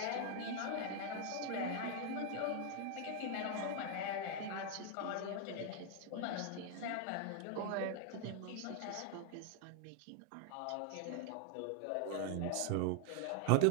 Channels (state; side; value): different; both; correlation 0.00